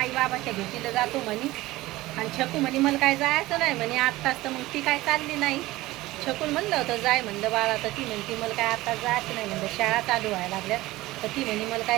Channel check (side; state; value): left; quieter; 18.3 dB